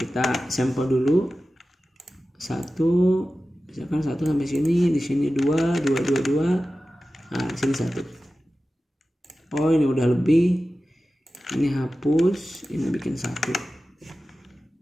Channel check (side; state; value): both; normal; correlation 0.95